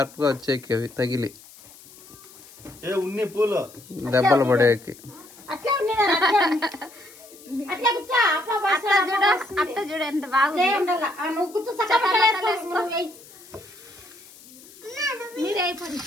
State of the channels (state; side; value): noise; left; hiss, 21 dB below the sound